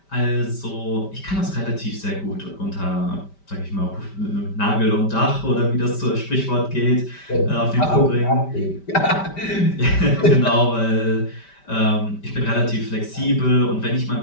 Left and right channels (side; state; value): right; late; 5.1 ms